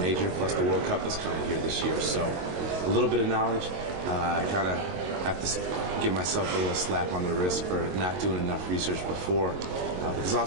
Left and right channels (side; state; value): left; late; 22 ms